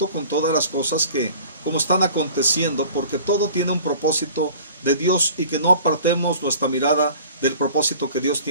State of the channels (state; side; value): inverted; both; correlation -0.45